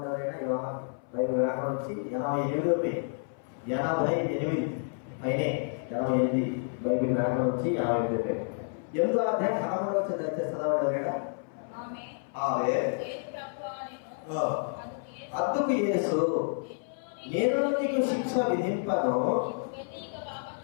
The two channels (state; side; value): silent; right; 57 dB below the other